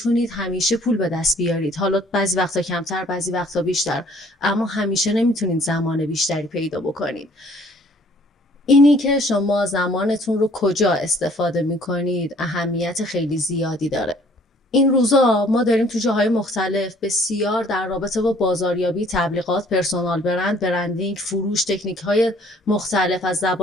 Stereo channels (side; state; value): both; normal; correlation 0.58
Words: همیشه پول به دست بیارید، حالا بعضی وقتا کمتر بعضی وقتا بیشتر، اما همیشه نمیتونید زمان بیشتری پیدا بکنید. اینی که شما زمانتون رو کجا استفاده میکنید اهمیت خیلی زیادی داره. این روزا ما داریم تو جاهای مختلف بسیار در رابطه با بازاریابی، تبلیغات، پرسونال برند، برندینگ، فروش، تکنیک‌های مختلف از